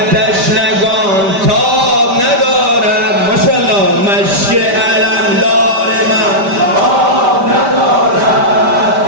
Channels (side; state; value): left; late; 5.1 ms